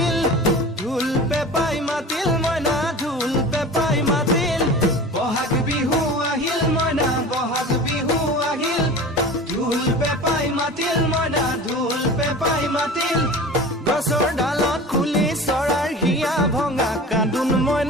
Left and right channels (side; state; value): both; normal; correlation 0.36